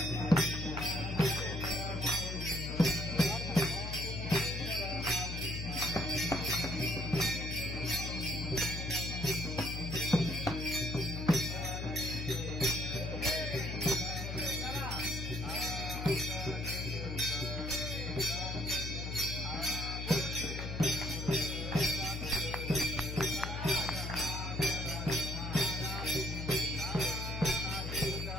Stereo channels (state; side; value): noise; left; hum, 5 dB below the sound